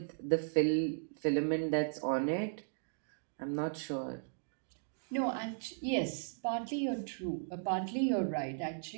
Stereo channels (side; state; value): left; silent; digital silence